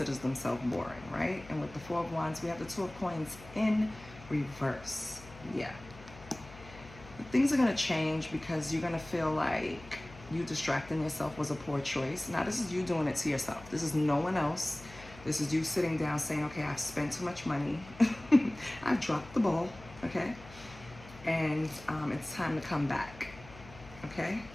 themselves boring, right? And with the Four of Wands, we have the Two of Coins in reverse. Yeah. Things are going to change because you're going to feel like you distracting yourself was a poor choice. Now, this is you doing it to yourself. This is no one else. This is you sitting down saying, okay, I've spent too much money. I've dropped the ball, okay? And it's time to come back, okay?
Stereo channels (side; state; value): left; noise; hum, 18 dB below the sound